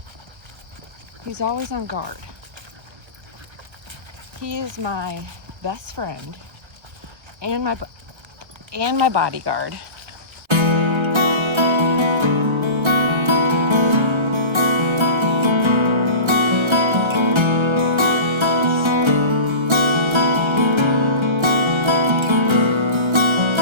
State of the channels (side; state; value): left; late; 1.3 ms